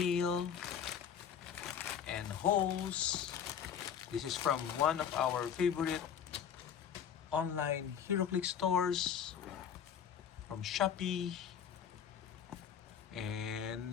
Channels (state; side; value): quieter; right; 8.3 dB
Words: and hose. This is from one of our favorite online Heroclix stores from Shopee.